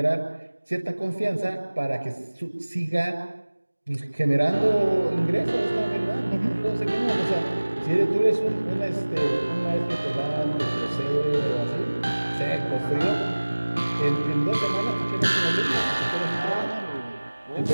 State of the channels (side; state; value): both; inverted; correlation -1.00